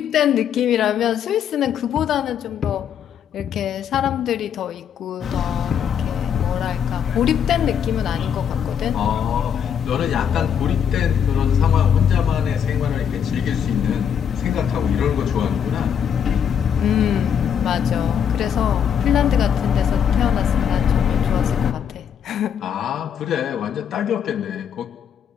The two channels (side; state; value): right; quieter; 8.2 dB